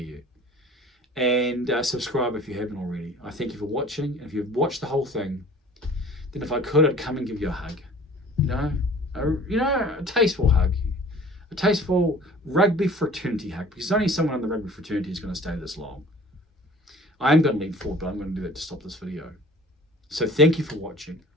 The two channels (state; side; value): normal; both; correlation 0.47